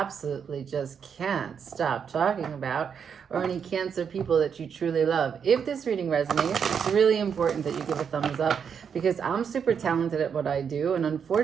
just can't stop talking about, or any Cancer people that you truly love. If this reading resonates, it's really important that you give a thumbs up, because I'm super talented at what I do, and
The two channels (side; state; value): left; quieter; 7.1 dB